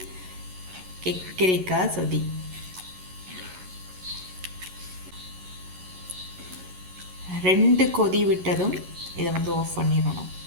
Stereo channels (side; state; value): left; late; 11 ms